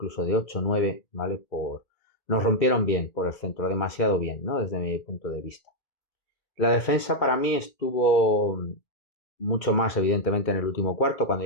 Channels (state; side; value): late; right; 2.3 ms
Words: de 8 o 9, ¿vale? Nos rompieron bien por el centro, demasiado bien, ¿no? Desde mi punto de vista. La defensa para mí estuvo mucho más evidentemente en el último cuarto, cuando